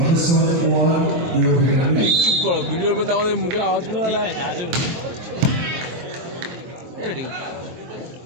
চুপ করো, ভিডিওর মধ্যে আমাদের মুখের আওয়াজ করে ঠিক আছে আজব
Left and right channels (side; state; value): left; late; 23 ms